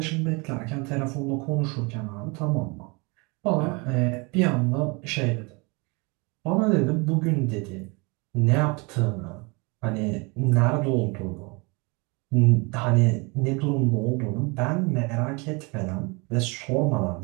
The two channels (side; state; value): left; quieter; 28.8 dB